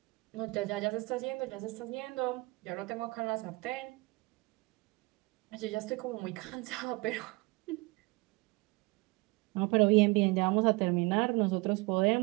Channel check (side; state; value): left; quieter; 24.9 dB